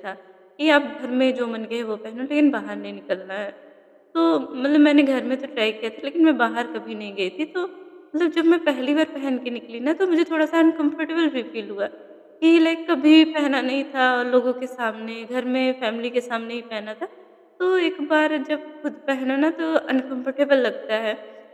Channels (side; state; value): both; identical; correlation 1.00